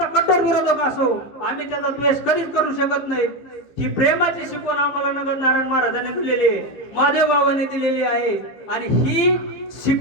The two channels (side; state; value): right; late; 14 ms